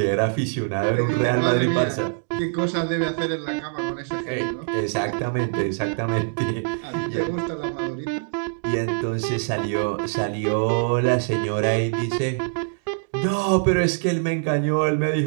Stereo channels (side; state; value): left; silent; digital silence